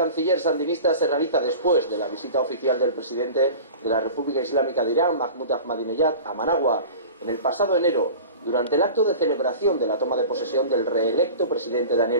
sandinista se realiza después de la visita oficial del presidente de la República Islámica de Irán, Mahmoud Ahmadinejad, a Managua, en el pasado enero, durante el acto de celebración de la toma de posesión del reelecto presidente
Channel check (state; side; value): inverted; both; correlation -0.36